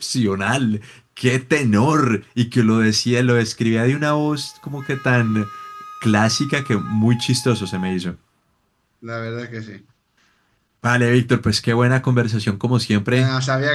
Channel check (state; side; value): identical; both; correlation 1.00